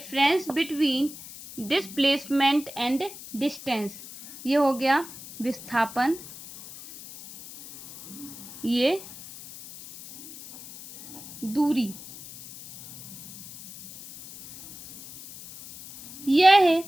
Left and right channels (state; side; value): noise; left; hiss, 15 dB below the sound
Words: between displacement and distance. ये हो गया विस्थापन, ये दूरी। यह